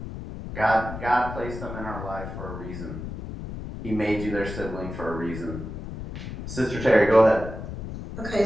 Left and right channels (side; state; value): left; noise; rumble, 9 dB below the sound